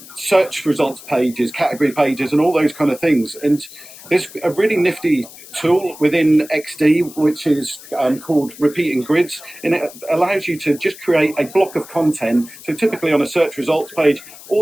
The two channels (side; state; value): left; noise; hiss, 18 dB below the sound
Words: search results pages, category pages, and all those kind of things. And there's a really nifty tool within XD which is called repeating grids, and it allows you to just create a block of content. So typically on a search results page,